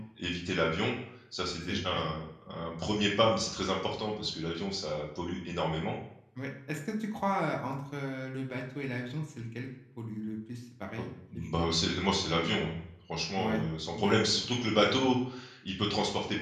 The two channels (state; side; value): identical; both; correlation 1.00